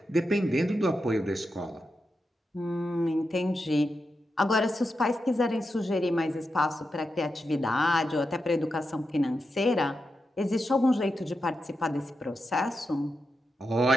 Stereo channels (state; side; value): normal; both; correlation 0.87